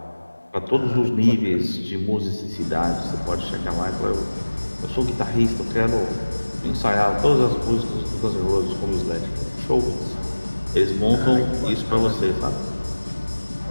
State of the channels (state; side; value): inverted; both; correlation -1.00